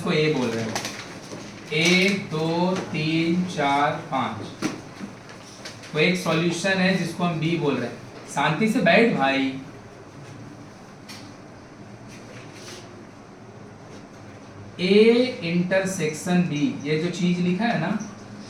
ए बोल रहे हैं, 1 2 3 4 5। कोई एक सॉल्यूशन है जिसको हम बी बोल रहे हैं। शांति से बैठ भाई। ए इंटरसेक्शन बी, ये जो चीज लिखा है ना,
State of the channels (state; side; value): identical; both; correlation 1.00